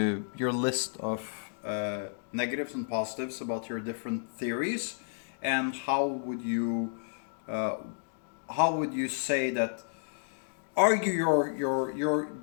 of negatives and positives about your different theories, and how would you say that? Argue your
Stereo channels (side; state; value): right; silent; digital silence